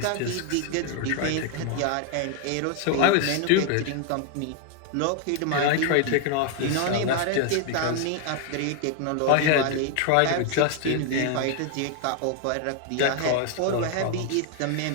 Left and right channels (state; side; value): different; both; correlation 0.00